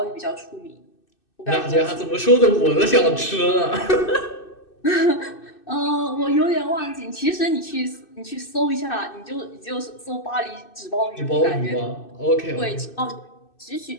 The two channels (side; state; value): right; late; 2.6 ms